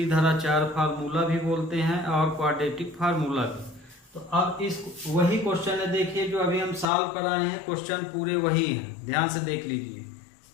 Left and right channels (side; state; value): right; drops out; at 6.9 s